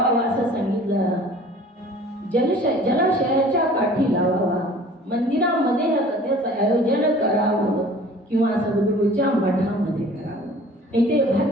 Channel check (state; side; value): normal; both; correlation 0.48